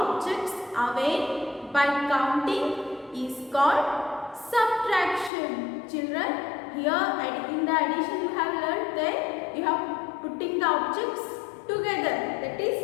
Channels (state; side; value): drops out; right; at 5.3 s